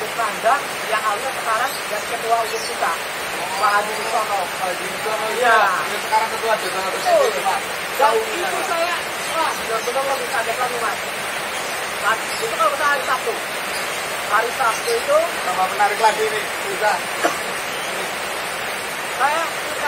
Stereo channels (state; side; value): identical; both; correlation 1.00